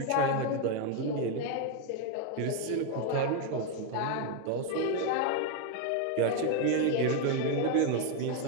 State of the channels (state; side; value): different; both; correlation 0.01